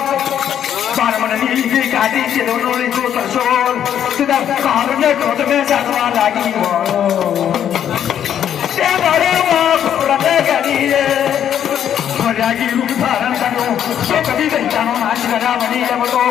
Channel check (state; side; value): quieter; right; 9.6 dB